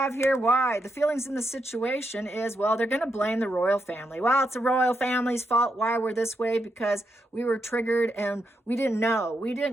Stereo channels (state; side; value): normal; both; correlation 0.82